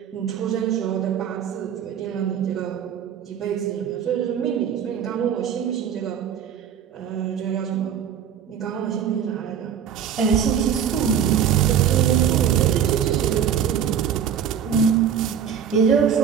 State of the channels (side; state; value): left; quieter; 8.4 dB